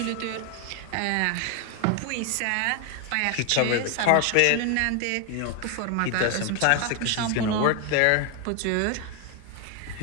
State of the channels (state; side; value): different; both; correlation 0.01